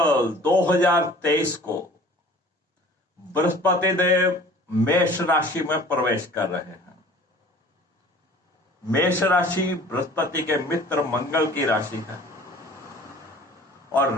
2023 को बृहस्पति देव मेष राशि में प्रवेश कर रहे हैं। मेष राशि बृहस्पति के मित्र मंगल की राशि है और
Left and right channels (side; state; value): both; normal; correlation 0.47